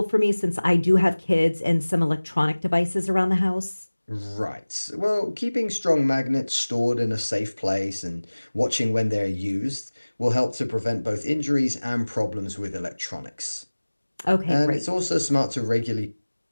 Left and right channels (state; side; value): inverted; both; correlation -1.00